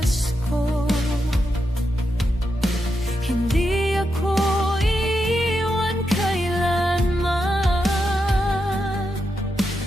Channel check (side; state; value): both; normal; correlation 0.85